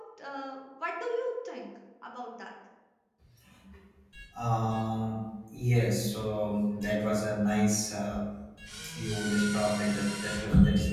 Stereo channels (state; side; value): identical; both; correlation 1.00